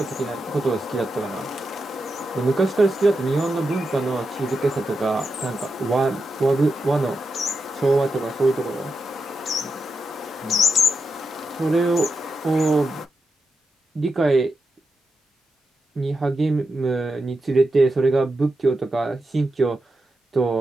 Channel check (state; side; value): normal; both; correlation 0.87